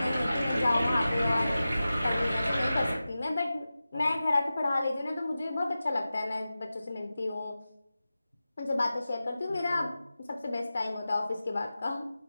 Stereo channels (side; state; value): both; inverted; correlation -0.94